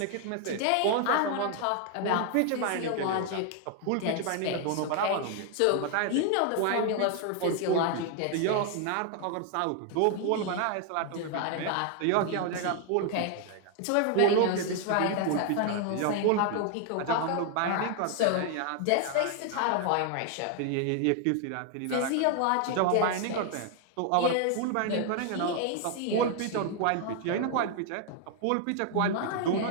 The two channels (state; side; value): different; both; correlation 0.00